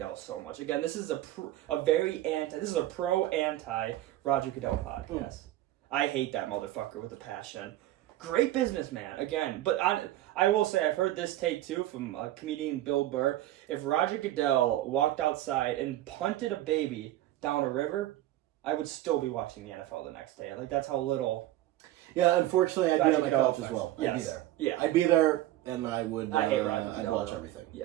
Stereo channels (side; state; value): left; quieter; 14.7 dB